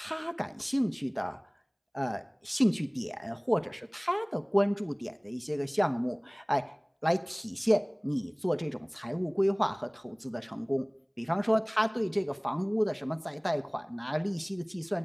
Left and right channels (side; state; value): both; identical; correlation 1.00